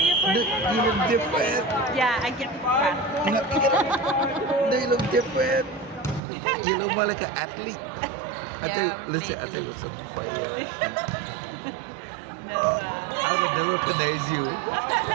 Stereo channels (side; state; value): left; drops out; at 6.2 s